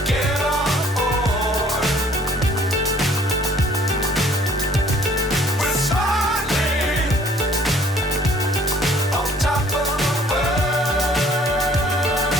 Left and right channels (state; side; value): normal; both; correlation 0.57